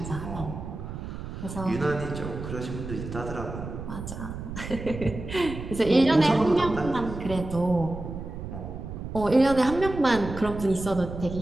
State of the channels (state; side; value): noise; right; rumble, 8 dB below the sound